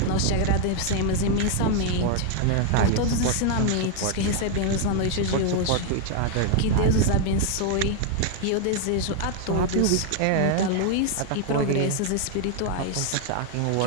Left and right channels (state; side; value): different; both; correlation 0.00